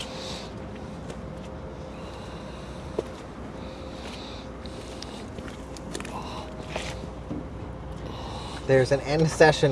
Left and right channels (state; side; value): identical; both; correlation 1.00